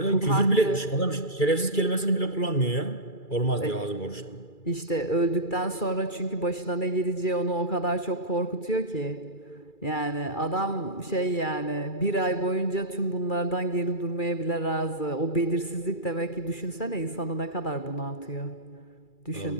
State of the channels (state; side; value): late; right; 2.3 ms